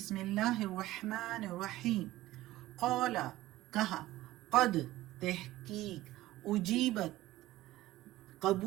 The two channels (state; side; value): quieter; left; 16.4 dB